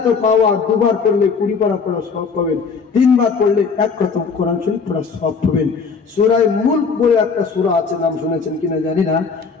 পাওয়ার, দুবার পড়লে 20 পারা পড়া সওয়াব পাবেন, 3 বার পড়লে 1 খতম কোরআন শরীফ পড়া সওয়াব পাবেন। সূরা মুলক বলে একটা সূরা আছে, নাম শুনেছেন কিনা জানি না।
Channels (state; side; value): quieter; right; 5.3 dB